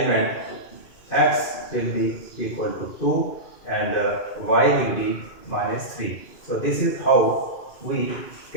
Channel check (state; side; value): late; right; 2.5 ms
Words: x will be equal to 2 and y will be minus 3. So this is how we